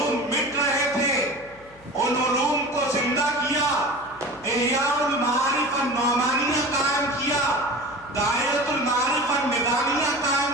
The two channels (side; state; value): left; noise; hum, 25 dB below the sound